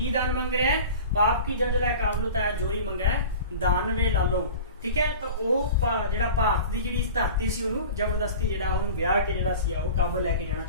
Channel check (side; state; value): both; inverted; correlation -0.37